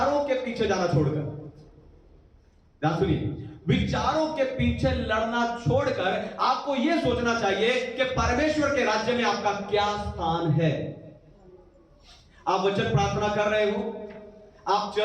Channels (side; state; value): both; identical; correlation 1.00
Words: के पीछे जाना छोड़कर, ध्यान सुनिए, विचारों के पीछे लड़ना छोड़कर आपको यह सोचना चाहिए कि परमेश्वर के राज्य में आपका क्या स्थान है। आप वचन प्रार्थना कर रहे हो, आप